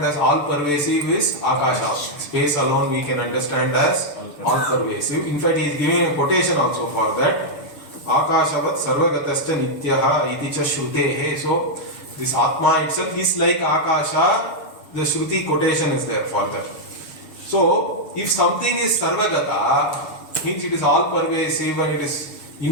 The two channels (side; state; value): right; late; 6.8 ms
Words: as all pervasive is Akasha. Space alone we can understand as all pervasive. In fact, he is giving a quotation also for that. Akashavat sarvagatascha nityaha iti cha shrutehe. So, this Atma itself is like Akasha. The Shruti quotation is there for that. So, if something is sarvagata, means it is all pervasive and it is